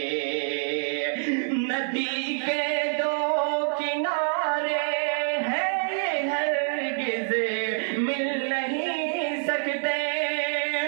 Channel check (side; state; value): left; silent; digital silence